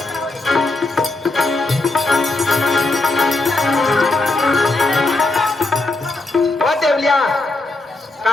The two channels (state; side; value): quieter; right; 3.1 dB